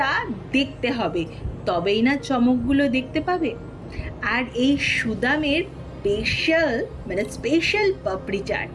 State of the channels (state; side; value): identical; both; correlation 1.00